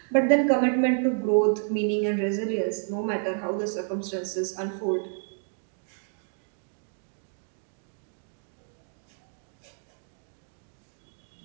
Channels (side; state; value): left; silent; 58 dB below the other